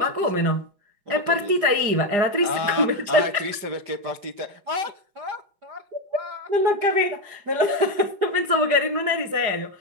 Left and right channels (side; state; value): left; late; 4.9 ms